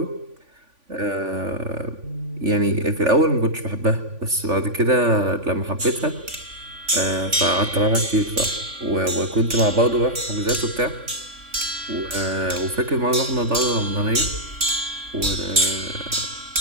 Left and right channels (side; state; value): left; late; 3.5 ms